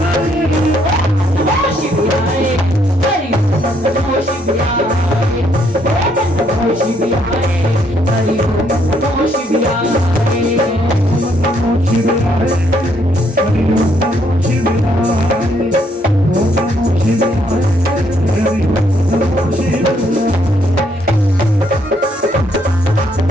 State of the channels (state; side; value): normal; both; correlation 0.71